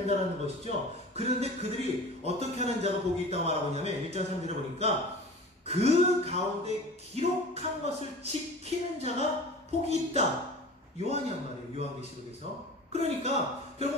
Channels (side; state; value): both; normal; correlation 0.38